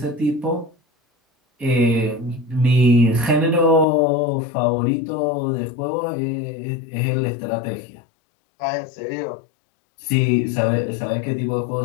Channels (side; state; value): right; drops out; at 3.9 s